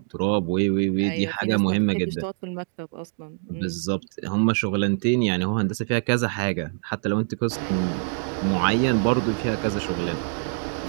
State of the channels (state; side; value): silent; left; digital silence